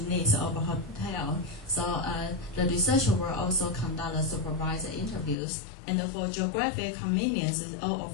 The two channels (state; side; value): drops out; right; at 5.4 s